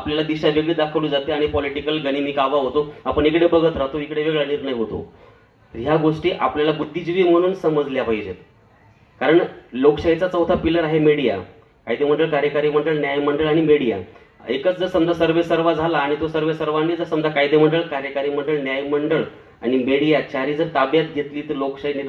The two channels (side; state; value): both; identical; correlation 1.00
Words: दिशा वेगळी दाखवली जाते आणि पॉलिटिकल गनिमी कावा होतो. आपण इकडे बघत राहतो, इकडे वेगळा निर्णय होतो. ह्या गोष्टी आपल्याला बुद्धिजीवी म्हणून समजल्या पाहिजेत. कारण लोकशाहीचा चौथा पिलर आहे मीडिया. कायदे मंडळ, कार्यकारी मंडळ, न्यायमंडळ आणि मीडिया. एकच जर समजा सर्वे सर्वा झाला आणि तो सर्वे सर्वांनी जर समजा कायदे मंडळ, कार्यकारी मंडळ, न्यायमंडळ आणि मीडिया चारही जर ताब्यात घेतली तर